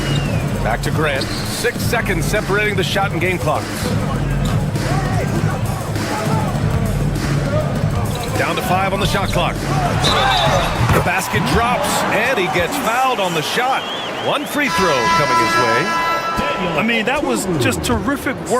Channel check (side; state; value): both; identical; correlation 1.00